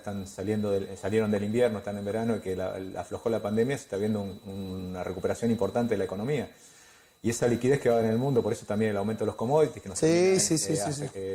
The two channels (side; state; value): both; identical; correlation 1.00